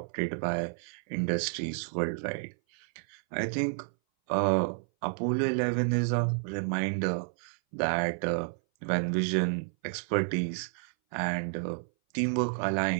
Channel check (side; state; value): left; silent; 57 dB below the other